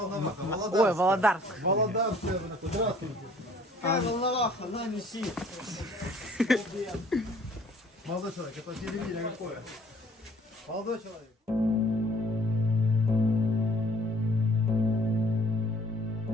Володарск. Володарск, здравствуйте. Какая Волноваха, на неси. Молодой человек, это телевидение какое? Молодой человек.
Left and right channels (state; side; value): normal; both; correlation 0.56